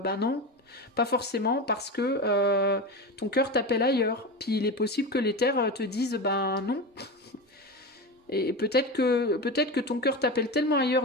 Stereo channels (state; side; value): normal; both; correlation 0.23